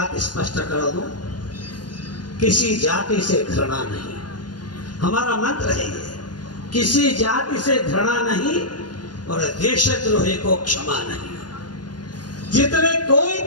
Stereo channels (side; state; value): right; late; 0.70 ms